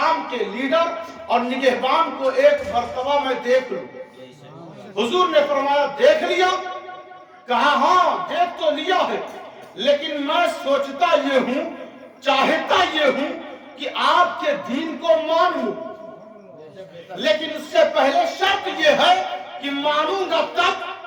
کے لیڈر اور نگہبان کو ایک مرتبہ میں دیکھ لوں۔ حضور نے فرمایا دیکھ لیا؟ کہا ہاں دیکھ تو لیا ہے، لیکن میں سوچتا یہ ہوں، چاہتا یہ ہوں کہ آپ کے دین کو مان لوں، لیکن اس سے پہلے شرط یہ ہے کہ مانوں گا تب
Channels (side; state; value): both; identical; correlation 1.00